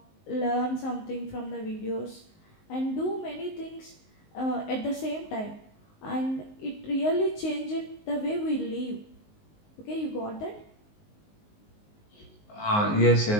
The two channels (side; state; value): right; late; 19 ms